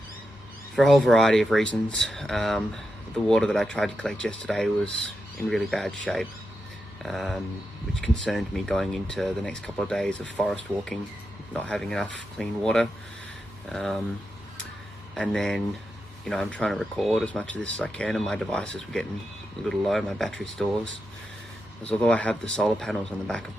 for a whole variety of reasons. The water that I tried to collect yesterday was in really bad shape, which concerned me going into the next couple of days of forest walking, not having enough clean water. And then, you know, I'm trying to record as much of this as I can, and my devices were getting a little low, my battery stores. Because although I have the solar panels on the back of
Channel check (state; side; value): normal; both; correlation 0.87